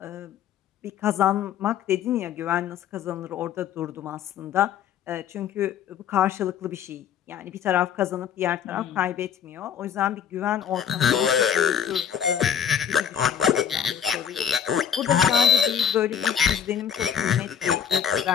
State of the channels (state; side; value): quieter; right; 8.5 dB